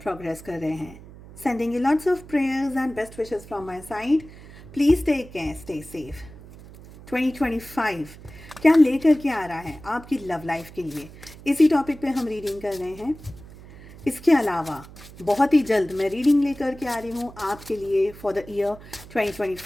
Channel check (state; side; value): noise; right; hum, 18 dB below the sound